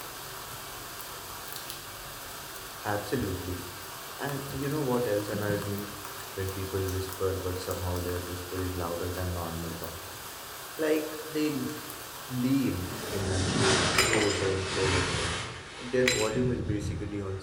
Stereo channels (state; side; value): identical; both; correlation 1.00